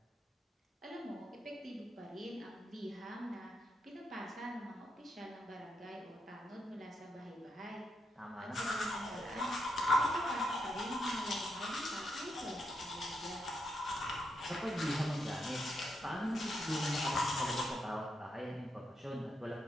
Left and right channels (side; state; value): both; normal; correlation 0.81